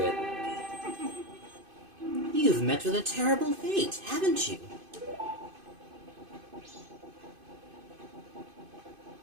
it. You've met with a terrible fate, haven't you?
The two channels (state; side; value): late; left; 2.5 ms